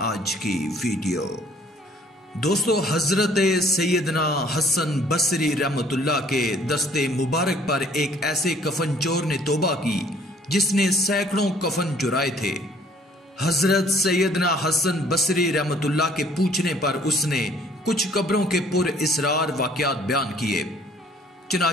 आज की वीडियो। दोस्तों, हजरत सैयदना हसन बसरी रहमतुल्लाह के दस्ते मुबारक पर एक ऐसे कफन चोर ने तौबा की जिसने सैकड़ों कफन चुराए थे। हजरत सैयदना हसन बसरी रहमतुल्लाह के पूछने पर उसने कुछ कब्रों के पुर इसरार वाकयात बयान किए।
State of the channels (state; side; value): normal; both; correlation 0.58